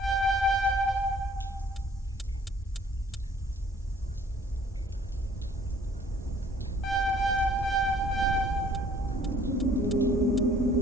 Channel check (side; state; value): both; normal; correlation 0.56